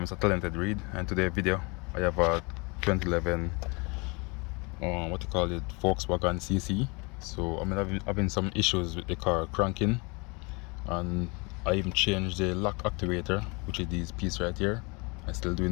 Talented Reed, and today's video I have a 2011 what you call it, Volkswagen CC. So I'm having some issues with the car cranking, and I even changed the lock actuator, which is this piece right here. I'm still doing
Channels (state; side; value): quieter; right; 29.0 dB